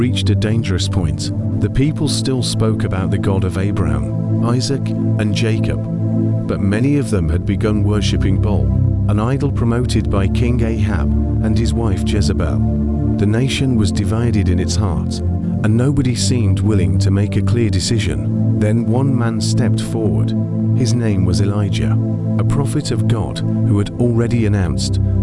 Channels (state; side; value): noise; left; hum, 25 dB below the sound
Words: a dangerous point. The people still spoke about the God of Abraham, Isaac, and Jacob, but many of them had begun worshipping Baal, an idol promoted by King Ahab and his wife Jezebel. The nation was divided in its heart, and nobody seemed willing to make a clear decision. Then one man stepped forward. His name was Elijah, a prophet of God who had already announced